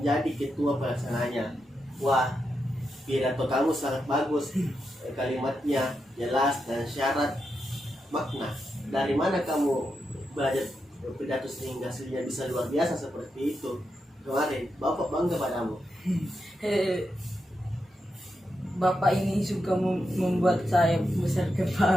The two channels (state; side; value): normal; both; correlation 0.86